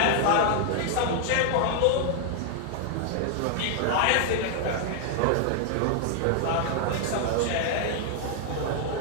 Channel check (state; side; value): different; both; correlation 0.00